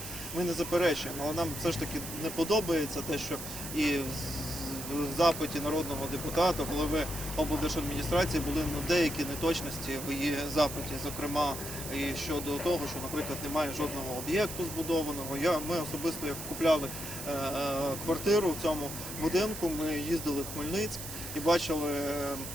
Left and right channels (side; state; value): right; noise; hiss, 8 dB below the sound